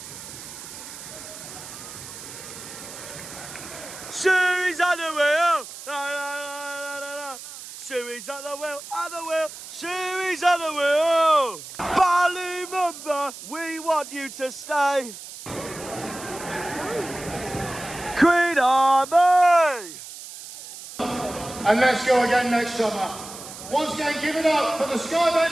Shoes on the wheel! La, la, la, la, la, la. Shoey's at the wheel, at the wheel. Shoey's at the wheel. Ballymumba, we want you to stay. Queen Army. And let's go again next summer. Once again, give it up for the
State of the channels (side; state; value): right; noise; hiss, 13 dB below the sound